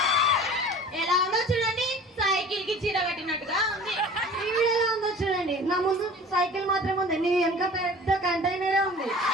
ఎలా ఉందో చూడండి, సైకిల్ కి చీర కట్టినట్టుగా ఉంది. ఈవిడ ఎలా ఉందో చూడండి, నా ముందు సైకిల్ మాత్రమే ఉంది, నీ వెనక పెద్ద కంటైనరే ఉంది.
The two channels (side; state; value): both; normal; correlation 0.43